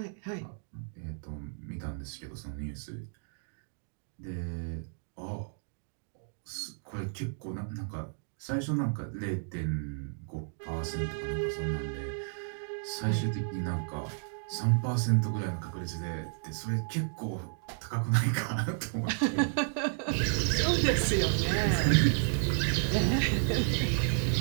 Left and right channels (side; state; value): left; silent; digital silence